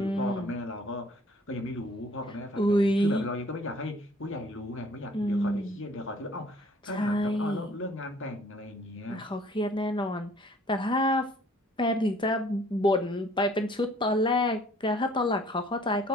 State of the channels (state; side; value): normal; both; correlation 0.57